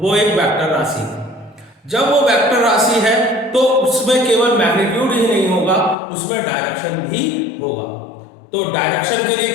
एक वेक्टर राशि है। जब वो वेक्टर राशि है तो उसमें केवल मैग्नीट्यूड ही नहीं होगा, उसमें डायरेक्शन भी होगा। तो डायरेक्शन के लिए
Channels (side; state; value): right; drops out; at 6.0 s